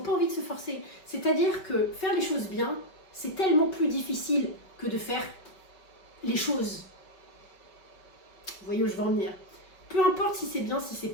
envie de se forcer. C'est-à-dire que faire les choses bien, c'est tellement plus difficile que de faire les choses. Vous voyez où je veux en venir? Peu importe si c'est bien, si c'est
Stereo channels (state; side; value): late; right; 5.3 ms